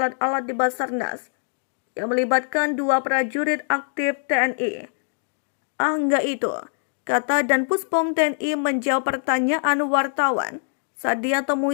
di Basarnas yang melibatkan 2 prajurit aktif TNI. Enggak itu, kata Danpuspom TNI menjawab pertanyaan wartawan saat dia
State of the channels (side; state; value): right; silent; digital silence